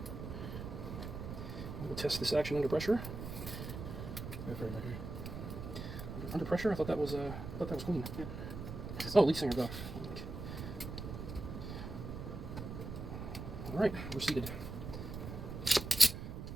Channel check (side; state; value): right; noise; rumble, 7 dB below the sound